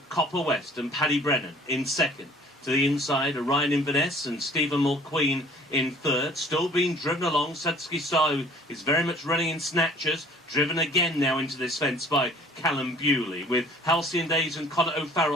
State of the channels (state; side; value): normal; both; correlation 0.53